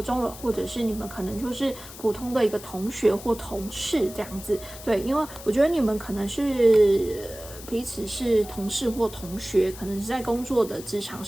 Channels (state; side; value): noise; left; hiss, 15 dB below the sound